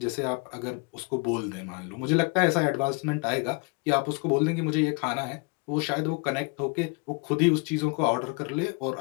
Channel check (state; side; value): quieter; right; 32.2 dB